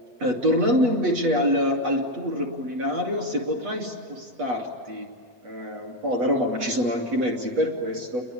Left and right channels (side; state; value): left; late; 8.2 ms